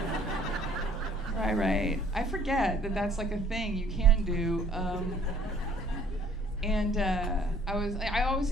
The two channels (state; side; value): normal; both; correlation 0.58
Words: Right. I forget that that's like a thing you can do. I always